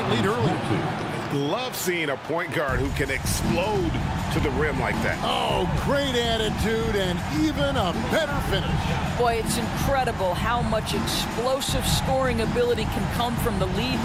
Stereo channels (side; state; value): both; identical; correlation 1.00